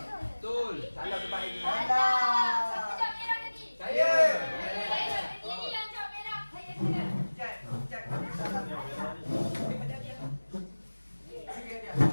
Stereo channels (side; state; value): both; inverted; correlation -1.00